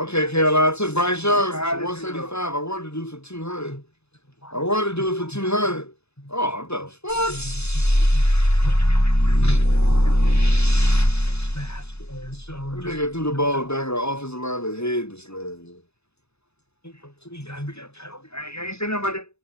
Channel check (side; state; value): right; late; 0.80 ms